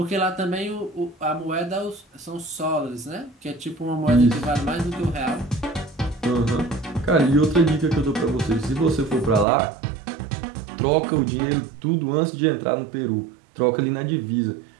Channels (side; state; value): left; drops out; at 9.5 s